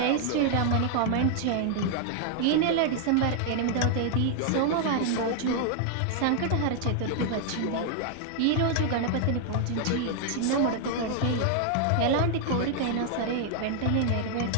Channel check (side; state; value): both; different; correlation 0.00